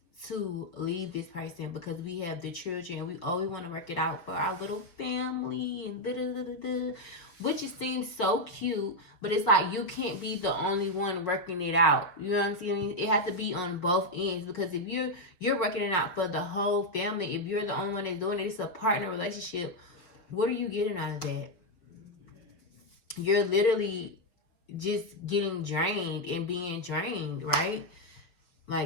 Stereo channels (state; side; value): late; right; 5.3 ms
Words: to leave this person because we have the children and we want to work it out for our little family and which it seems so cute, but it's like you can't be the only one working it out. You know what I'm saying? It has to be on both ends because if you're working it out for the whole family, if you're the only one that's doing it, it's a partner relationship. What are you getting out of that? You're literally just getting drained and being drained, right?